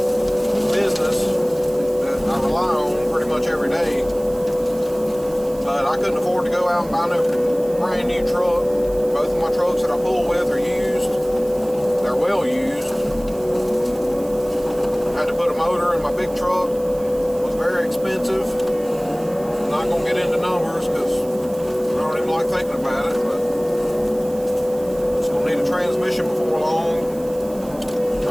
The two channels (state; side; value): noise; right; hiss, 21 dB below the sound